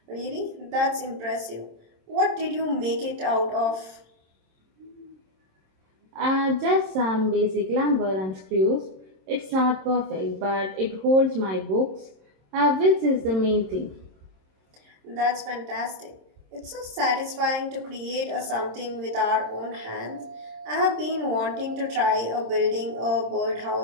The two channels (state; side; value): late; left; 26 ms